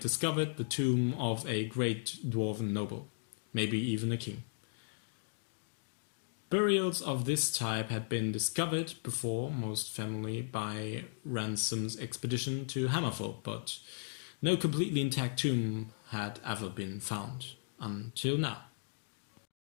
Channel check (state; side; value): silent; right; digital silence